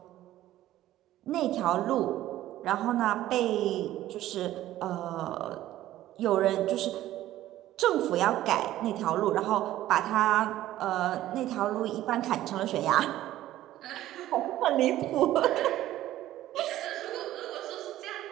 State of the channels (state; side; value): quieter; left; 14.1 dB